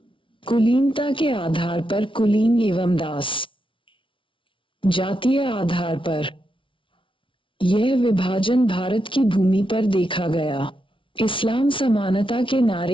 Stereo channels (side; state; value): right; late; 0.25 ms